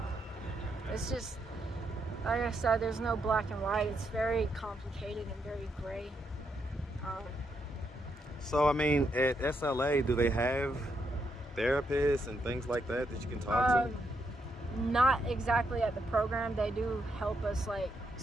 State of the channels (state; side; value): normal; both; correlation 0.79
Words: It's just, like I said, there's no black and white. It's very complicated and very gray. So, I mean, at SLA, do they have therapists and things like that you can talk to? Not exactly at the program. They do help us, like,